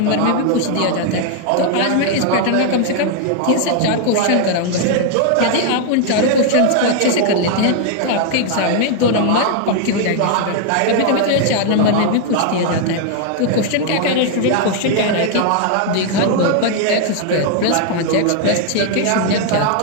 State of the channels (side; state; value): both; different; correlation 0.00